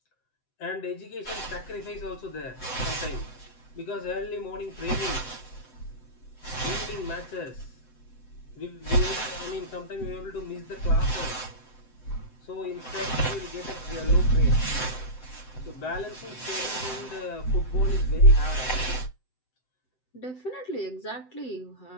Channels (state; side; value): late; right; 7.8 ms